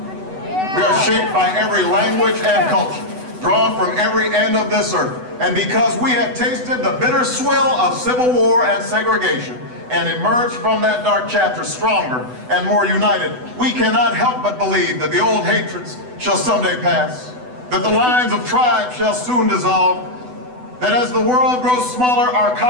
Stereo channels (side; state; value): left; late; 8.0 ms